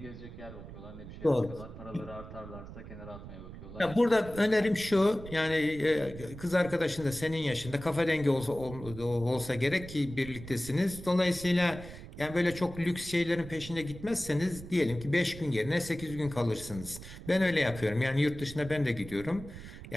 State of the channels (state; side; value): noise; right; rumble, 13 dB below the sound